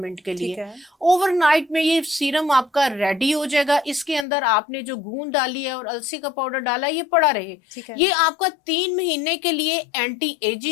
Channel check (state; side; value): drops out; right; at 4.2 s